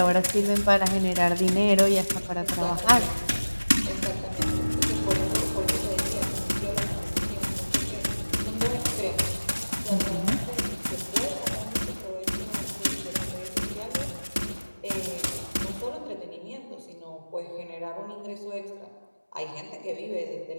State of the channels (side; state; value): both; inverted; correlation -1.00